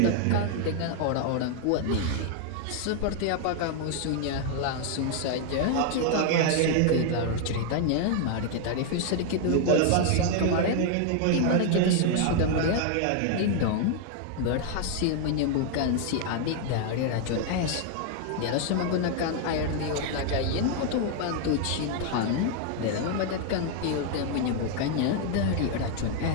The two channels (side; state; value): both; different; correlation 0.00